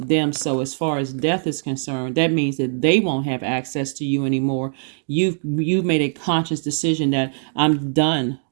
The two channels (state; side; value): silent; left; digital silence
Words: them. So as far as death is concerned, that means that they won't have access to you anymore. You've made a conscious decision that I'm done